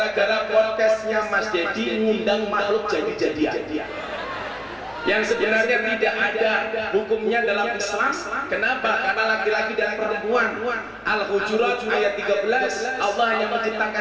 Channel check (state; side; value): identical; both; correlation 1.00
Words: podcastnya Mas Dedi ngundang makhluk jadi-jadian. Yang sebenarnya tidak ada hukumnya dalam Islam. Kenapa? Karena laki-laki dan perempuan. Al-Hujurat ayat 13, Allah hanya